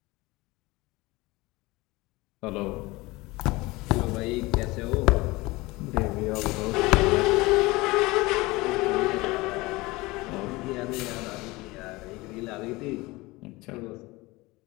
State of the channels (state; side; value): quieter; right; 21.8 dB